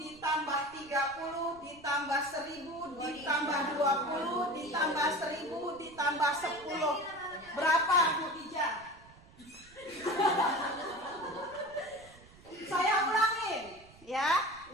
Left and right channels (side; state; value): right; noise; rumble, 24 dB below the sound